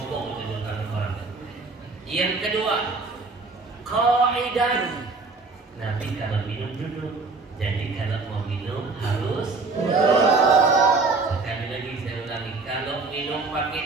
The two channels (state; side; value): quieter; left; 3.9 dB